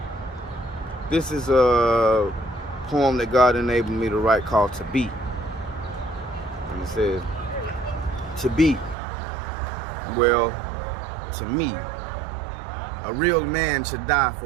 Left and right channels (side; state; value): left; drops out; at 9.0 s